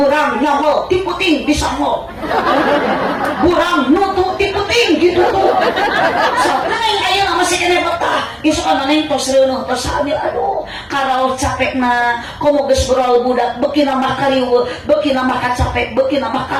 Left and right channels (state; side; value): identical; both; correlation 1.00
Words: nyamol ti puting disamol burang nutu ti puting ditutu neng ayeuna masih kene betah isuk ana neng tos reuneuh tos hamil aduh karaos capekna komo geus beral budak beuki mah kariweuh beuki mah kacapek beuki mah